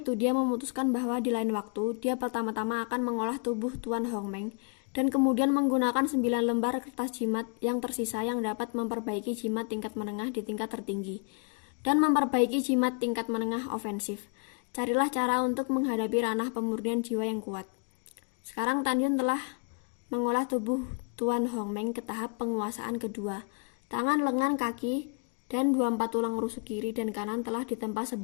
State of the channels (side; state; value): right; quieter; 36.5 dB